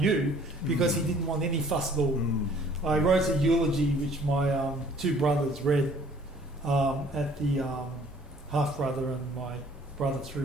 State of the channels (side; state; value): both; normal; correlation 0.56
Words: because he didn't want any fuss at all. I wrote a eulogy which my two brothers read at the half-brother and my brother